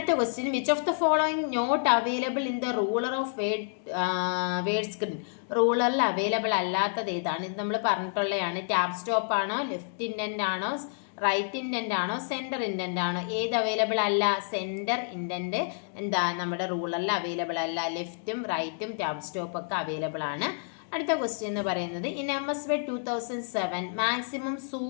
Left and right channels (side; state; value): right; silent; digital silence